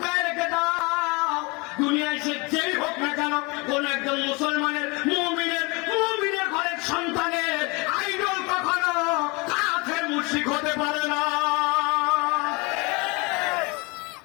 রেখে দাও, দুনিয়ায় সে যেই হোক না কেন, কোন একজন মুসলমানের মুমিনের ঘরের সন্তানের আইডল কখনো কাফের মুশরিক হতে পারে না।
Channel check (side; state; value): right; quieter; 27.7 dB